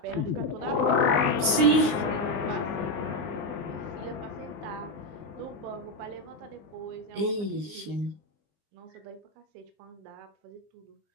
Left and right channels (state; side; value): late; left; 19 ms